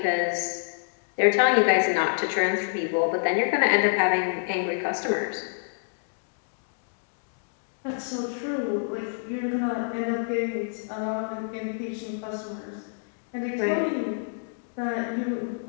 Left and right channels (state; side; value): silent; right; digital silence